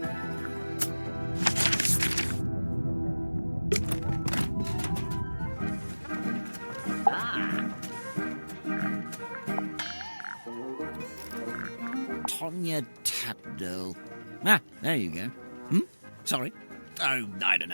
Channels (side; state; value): both; inverted; correlation -1.00